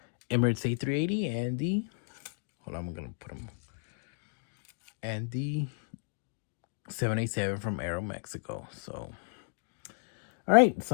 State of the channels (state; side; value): silent; right; digital silence